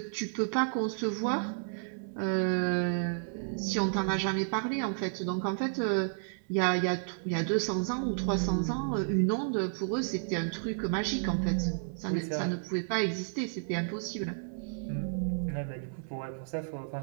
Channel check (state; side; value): silent; left; digital silence